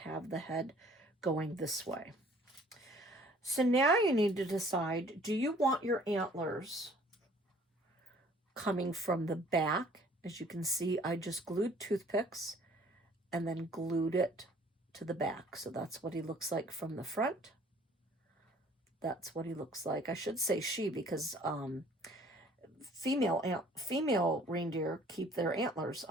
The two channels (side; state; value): both; normal; correlation 0.55